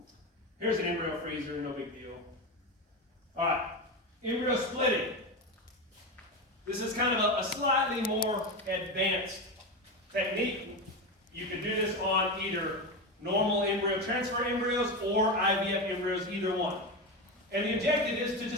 Here's an embryo freezer, no big deal. All right, embryo splitting. This is kind of a slightly more advanced technique. You can do this on either normal embryo transfer embryos or IVF embryos, either one. And the objective is to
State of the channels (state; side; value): normal; both; correlation 0.18